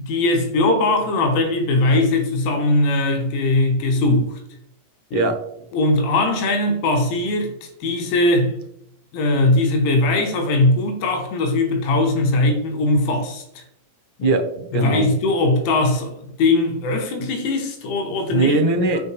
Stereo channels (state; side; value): late; right; 18 ms